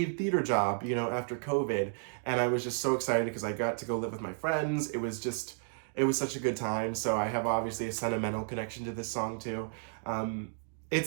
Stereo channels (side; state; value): left; silent; 56 dB below the other